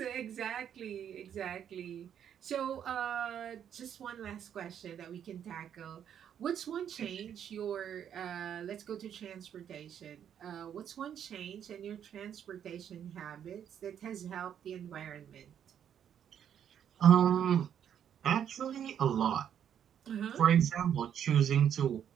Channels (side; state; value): left; quieter; 9.1 dB